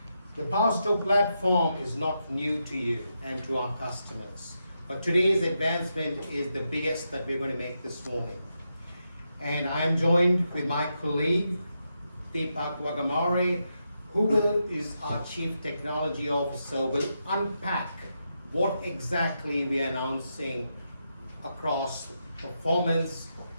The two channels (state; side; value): inverted; both; correlation -0.85